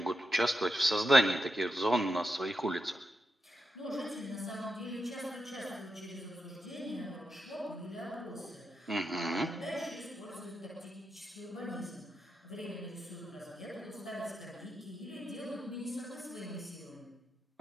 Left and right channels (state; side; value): normal; both; correlation 0.87